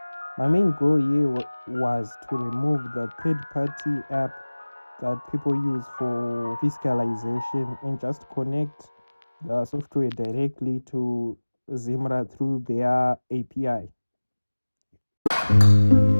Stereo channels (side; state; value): both; inverted; correlation -1.00